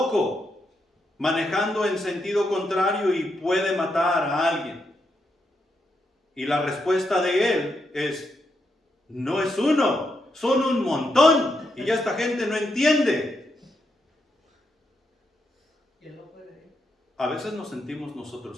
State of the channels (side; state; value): both; normal; correlation 0.81